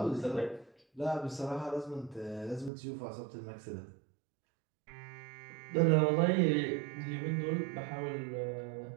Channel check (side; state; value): left; drops out; at 2.7 s